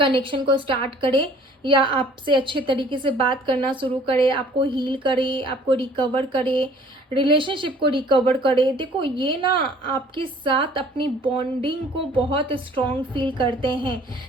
को स्टार्ट करे, या आपसे अच्छे तरीके से बात करना शुरू करे, आपको हील करे, आपको रिकवर करे, रिलेशनशिप को रिकवर करे। देखो ये ना आपके साथ अपनी बॉन्डिंग को बहुत स्ट्रॉन्ग फील करते हैं।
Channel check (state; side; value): normal; both; correlation 0.54